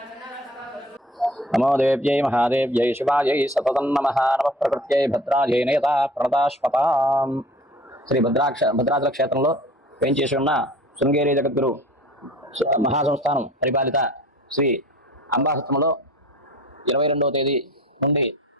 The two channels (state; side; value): normal; both; correlation 0.46